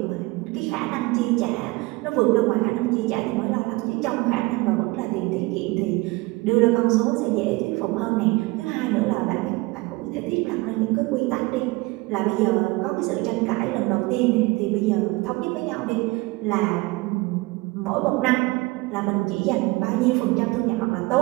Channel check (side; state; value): left; quieter; 22.9 dB